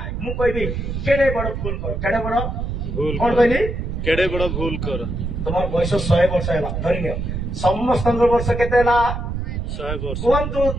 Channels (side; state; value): right; noise; rumble, 4 dB below the sound